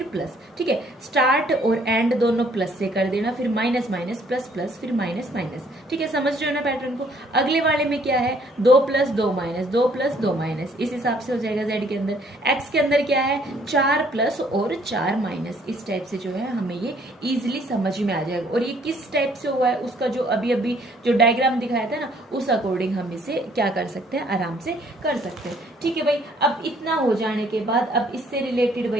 प्लस, ठीक है। स्टार्ट और एंड दोनों प्लस से कर देना, फिर माइनस माइनस प्लस प्लस फिर माइनस माइनस, ठीक है। समझ रहे हो ना पैटर्न को। अगले वाले में क्या है, 2 प्लस 2 माइनस, 2 प्लस 2 माइनस, इस हिसाब से हो जाएगा जेड के अंदर। एक्स के अंदर क्या है, 4 प्लस और 4 माइनस, इस टाइप से जो है हमें ये इजिली समझ में आ जाएगा। और ये किस टाइप से हुआ है, उसका जो अभी अभी जो डायग्राम दिखाया था ना, उस अकॉर्डिंग हम इसे क्या कर सकते हैं, आराम से कर सकते हैं, ठीक है भाई। अब इतना हो जाने के बाद अब इससे रिलेटेड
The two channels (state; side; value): normal; both; correlation 0.62